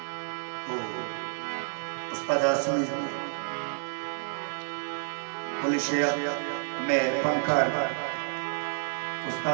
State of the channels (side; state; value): left; silent; digital silence